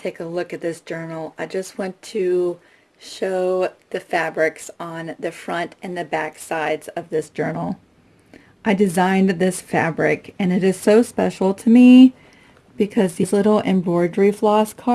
a look at this journal, I just want to show the fabrics on the front and the back sides of this journal. I designed this fabric, and it is so special to me because these little embroidery floss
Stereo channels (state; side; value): identical; both; correlation 1.00